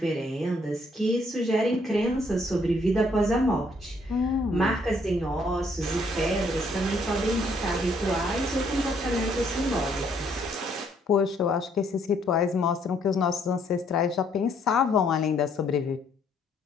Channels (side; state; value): both; normal; correlation 0.67